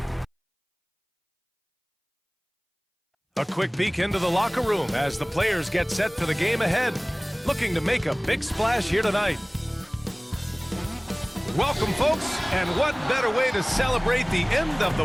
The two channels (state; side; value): identical; both; correlation 1.00